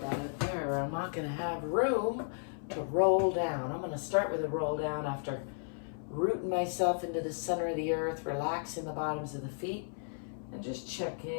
that up there or I'm not gonna have room to roll down. I'm going to start with a roll down after rooting myself into the center of the earth, relaxing the bottoms of the feet, and just check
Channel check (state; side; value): silent; right; 55 dB below the other